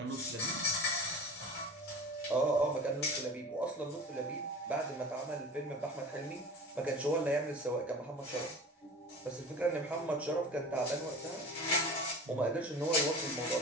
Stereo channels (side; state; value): both; normal; correlation 0.37